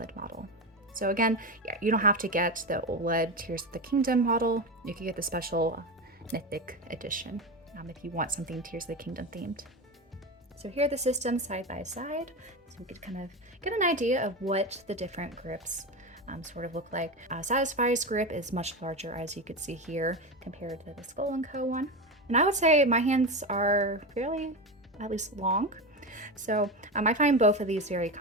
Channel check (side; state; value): both; normal; correlation 0.19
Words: model. So again, yeah, you don't have to get the OLED Tears of the Kingdom model. You can get the special Mythic edition if you want something Tears of the Kingdom themed. So here are the systems side by side, so we could kind of get an idea of what the different grips sort of look like. Satisfye's grip is much larger, as you could see here, compared to the SkullnCo one. And I would say my hands are fairly, at least, long. So I find both of these very